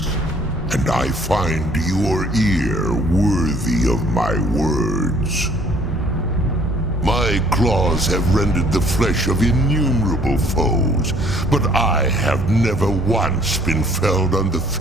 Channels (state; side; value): normal; both; correlation 0.59